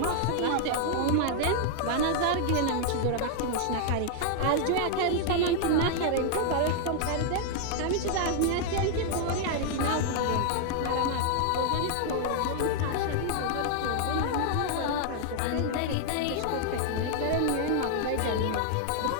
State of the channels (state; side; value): different; both; correlation 0.00